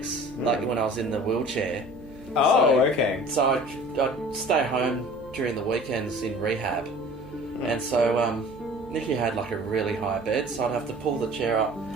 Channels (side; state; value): right; noise; hum, 20 dB below the sound